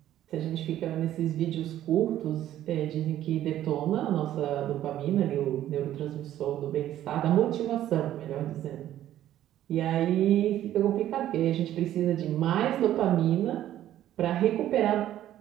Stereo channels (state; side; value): quieter; left; 12.5 dB